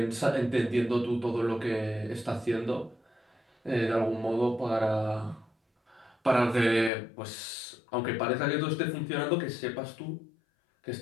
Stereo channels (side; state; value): right; drops out; at 6.9 s